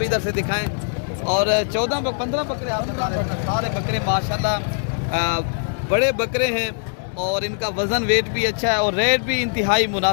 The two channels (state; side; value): silent; right; digital silence